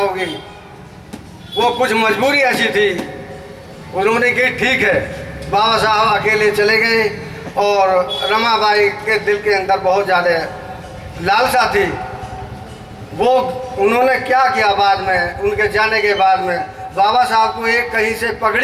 वो कुछ मजबूरी ऐसी थी, उन्होंने की ठीक है। बाबा साहब अकेले चले गए और रमाबाई के दिल के अंदर बहुत ज़्यादा लालसा थी। वो उन्होंने क्या किया, बाद में उनके जाने के बाद में बाबा साहब को एक कहीं से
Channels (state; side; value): identical; both; correlation 1.00